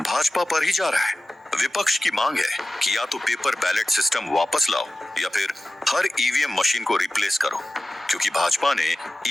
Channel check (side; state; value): both; normal; correlation 0.94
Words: पर ही जा रहा है। विपक्ष की मांग है कि या तो पेपर बैलेट सिस्टम वापस लाओ या फिर हर ईवीएम मशीन को रिप्लेस करो, क्योंकि भाजपा ने